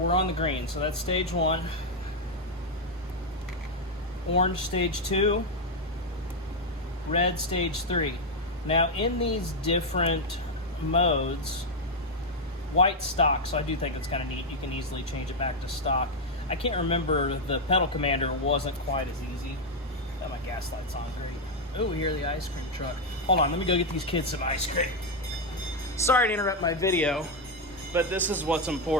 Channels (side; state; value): both; normal; correlation 0.03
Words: on the green. So that's stage 1. Orange stage 2, red stage 3. Now in these different modes, white stock, so I do think it's kind of neat. You can easily change it back to stock. I can't remember, the pedal commander wasn't quite as easy. Got my gas lights on, great. Oh, we hear the ice cream truck. Hold on, let me go get these kids some ice cream. Sorry to interrupt my video, but this is what's